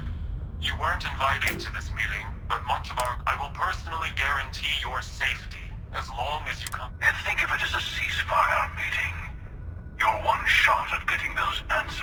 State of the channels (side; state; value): both; identical; correlation 1.00